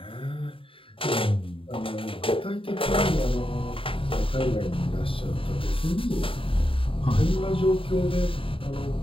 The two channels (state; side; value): late; right; 0.26 ms